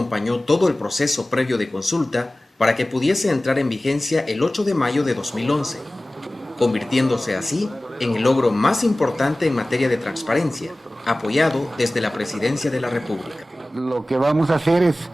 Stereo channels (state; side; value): normal; both; correlation 0.97